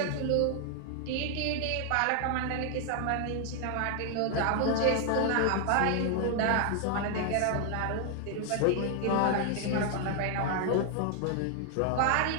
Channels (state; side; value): different; both; correlation 0.00